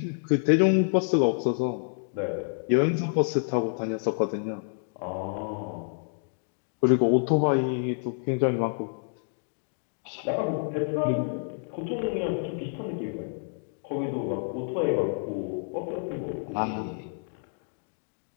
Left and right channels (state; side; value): silent; right; 59 dB below the other